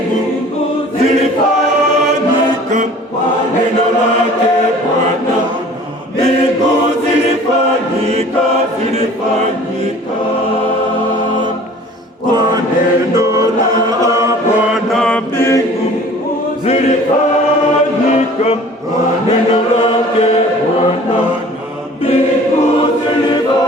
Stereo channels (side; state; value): both; normal; correlation 0.47